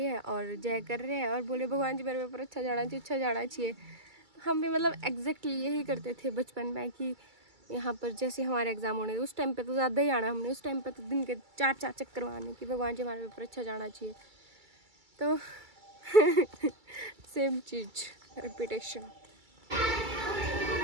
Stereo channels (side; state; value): left; late; 2.3 ms